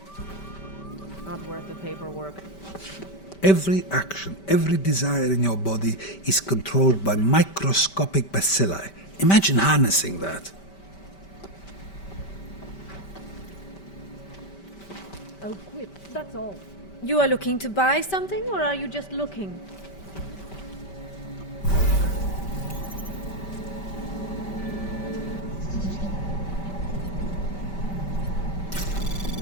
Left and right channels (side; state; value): right; late; 5.2 ms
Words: Not worth the paperwork. Every action, every desire in your body is controlled by microscopic bacilli. Imagine harnessing that. I'll quit, that's all. You are looking to buy something, or are you just looking?